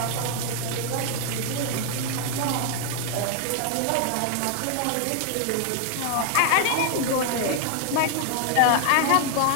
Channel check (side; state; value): both; different; correlation 0.00